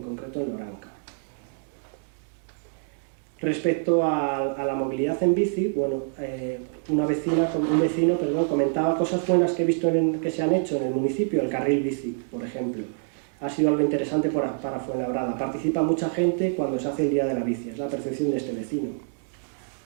concreto en Loranca. Respecto a la movilidad en bici, bueno, un vecino comentaba cosas buenas que he visto que se han hecho en el municipio, el carril bici, por ejemplo. Ha sido algo interesante para Fuenlabrada. Participa mucha gente cuando se hace el día de la bici, es la percepción de este vecino.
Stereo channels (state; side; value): silent; left; digital silence